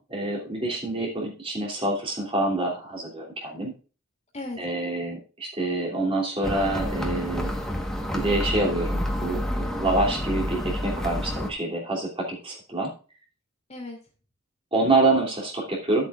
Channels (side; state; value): both; normal; correlation 0.35